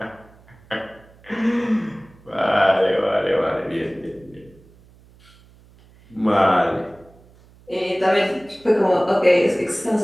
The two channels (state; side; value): noise; right; hum, 27 dB below the sound